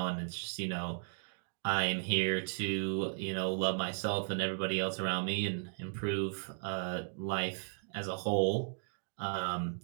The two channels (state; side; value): silent; left; digital silence